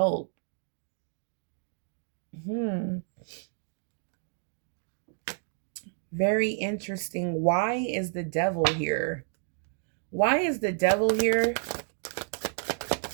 Very interesting. Why is the devil here? Why is the devil here?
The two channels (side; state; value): left; silent; 58 dB below the other